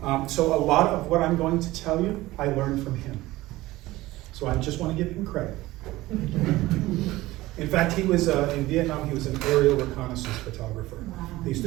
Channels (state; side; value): quieter; left; 18.0 dB